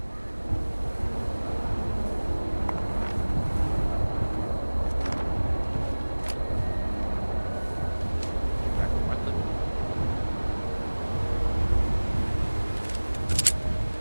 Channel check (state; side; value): inverted; both; correlation -1.00